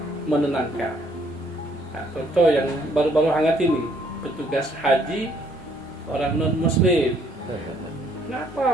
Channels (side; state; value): both; normal; correlation 0.65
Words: menenangkan. Nah, contoh yang baru-baru hangat ini, petugas haji orang non-muslim.